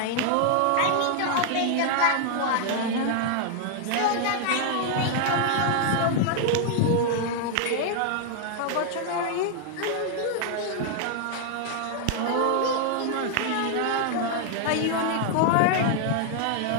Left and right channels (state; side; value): different; both; correlation 0.00